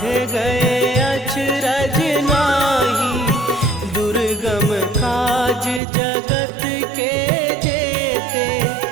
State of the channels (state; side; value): drops out; left; at 5.8 s